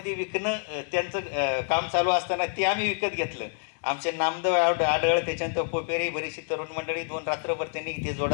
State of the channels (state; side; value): quieter; right; 40.0 dB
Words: विकणं त्यांचं काम चालू असताना ते आम्ही विकत घेतलं. आमचे नामदेव आढळ, त्याच्यानंतर पोपेरी, बरीचशी तरुण मंडळी 2 रात्रभर त्यांनी ते